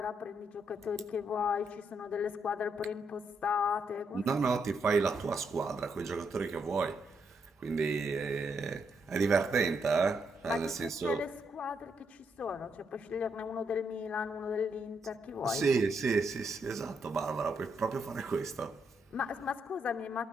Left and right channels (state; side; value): normal; both; correlation 0.78